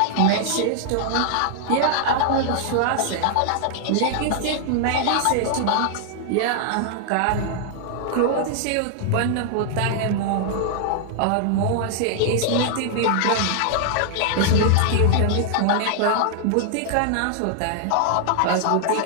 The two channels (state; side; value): different; both; correlation 0.00